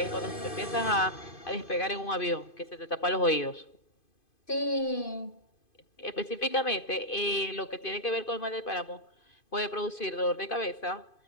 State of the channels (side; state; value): right; late; 2.5 ms